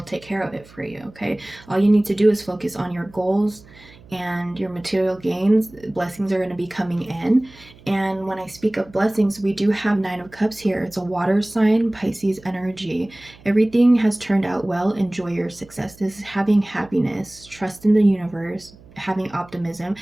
take care of it for you. Okay, all you need to do is focus on your goals and your material gains. Blessings are going to be coming in. And when I speak of blessings, we do have Nine of Cups here. It's a water sign, Pisces energy. Everything has turned out well. Enjoy your success. This is having happiness, trust in the universe, having optimism.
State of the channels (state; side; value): noise; right; hum, 24 dB below the sound